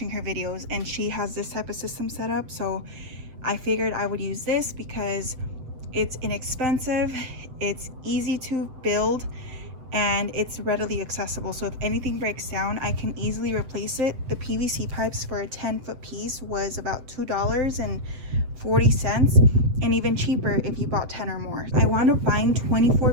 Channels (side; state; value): left; late; 7.8 ms